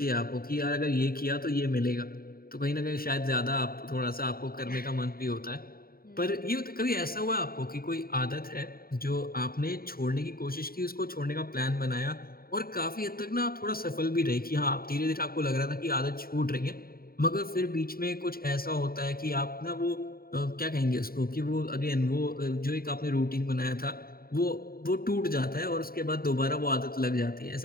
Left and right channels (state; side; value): late; right; 0.43 ms